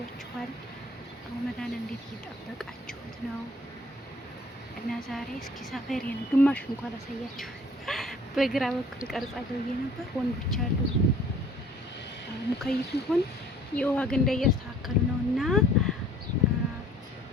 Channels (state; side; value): normal; both; correlation 0.53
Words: ረመዳን እንዴት እየጠበቃችሁት ነው? እና ዛሬ እስኪ ሰፈሬን ግማሽ እንኳን አሳያችሁ። በግራ በኩል ቀርጻለሁ ብዬ ነበር። ወንዶች አሉ ሙከይፍ ይሁን የውሃ ገንዳ እያስተካከሉ ነው እና